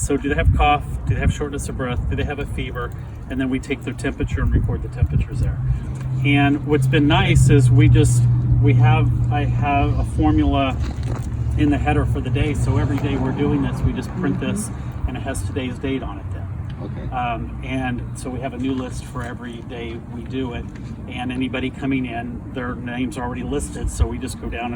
do they have cough? Do they have shortness of breath? Do they have a fever? And then we take their temperature and record the temperatures there. And what's been nice is I have a formula in the header for the day. So every day we're doing this, we just print this, and it has today's date on it then. Okay. And so we have a new list for every day we do it, and anybody coming in, their names are already listed, so we just go down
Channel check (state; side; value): identical; both; correlation 1.00